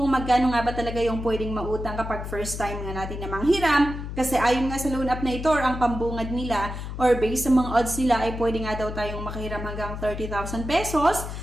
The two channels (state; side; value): noise; left; hum, 7 dB below the sound